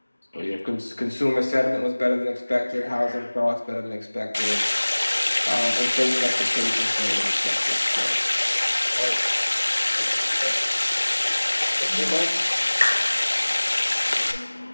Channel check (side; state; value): both; inverted; correlation -1.00